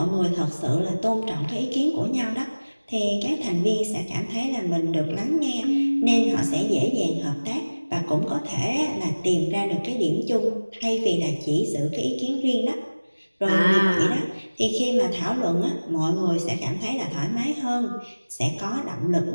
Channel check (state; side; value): inverted; both; correlation -1.00